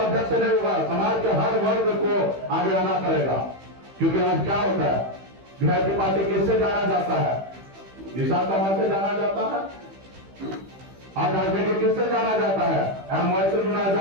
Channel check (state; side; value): late; left; 15 ms